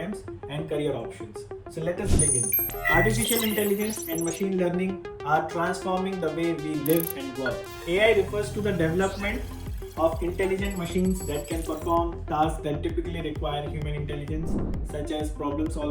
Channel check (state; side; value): identical; both; correlation 1.00